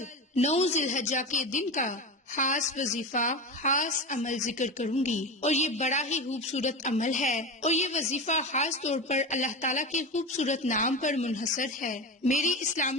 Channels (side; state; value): both; normal; correlation 0.24